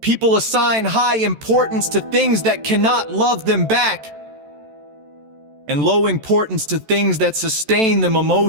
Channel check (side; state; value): left; late; 14 ms